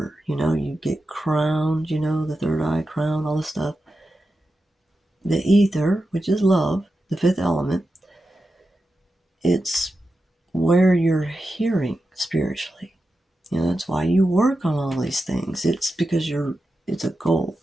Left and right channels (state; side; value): normal; both; correlation 0.90